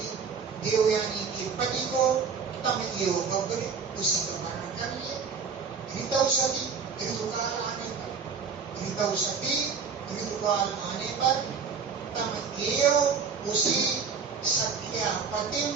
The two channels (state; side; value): quieter; left; 5.8 dB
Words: देवयानी के पति को तम एवं बब्बरे उसी का वर्णन कर लिए। ऋतौसती ऋतुकाल आने पर ऋतुकाल आने पर तम एवं उसी सख्या पति